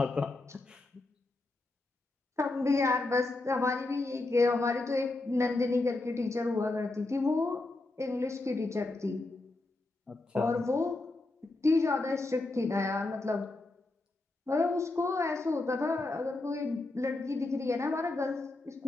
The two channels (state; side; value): quieter; right; 3.0 dB